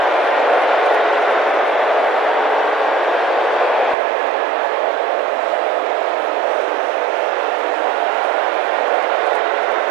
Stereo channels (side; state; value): left; drops out; at 4.0 s